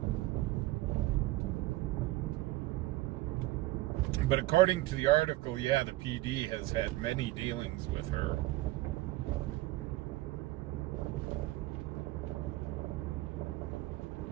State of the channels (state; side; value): quieter; left; 18.4 dB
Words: But according to the article, yeah, the PD has had many dealings with her.